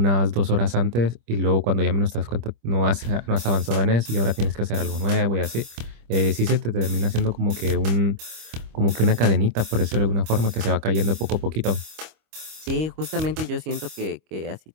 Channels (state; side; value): late; left; 25 ms